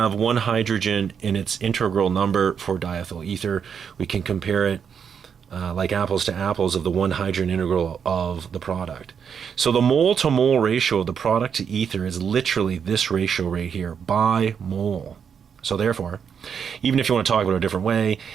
1 hydrogen in its integral number for diethyl ether, we can compare it like apples to apples of the 1 hydrogen integral of the product. So the mole-to-mole ratio of the product to ether is literally this ratio right here, by mole. So therefore, even if you want to talk about it a different way,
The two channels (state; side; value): quieter; left; 7.2 dB